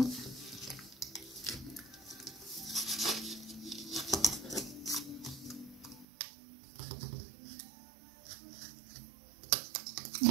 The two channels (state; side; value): drops out; left; at 6.1 s